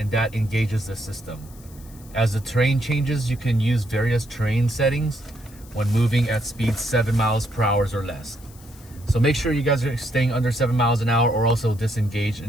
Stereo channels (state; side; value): noise; left; hiss, 24 dB below the sound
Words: that engages the system. As the terrain changes, you can use various terrain settings when moving at speeds 7 miles per hour or less. So make sure you guys are staying under 7 miles an hour, or also disengage